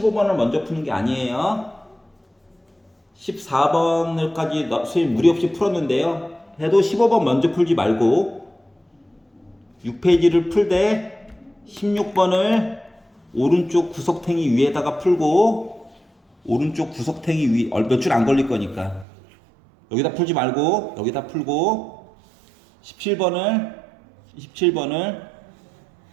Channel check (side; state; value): left; drops out; at 19.1 s